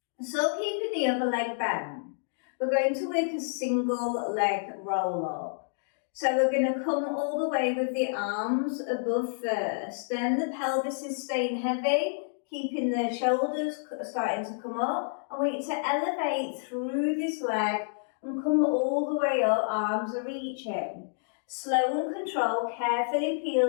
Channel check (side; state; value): right; silent; digital silence